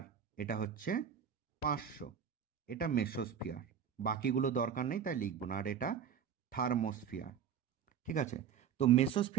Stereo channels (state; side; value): quieter; left; 8.0 dB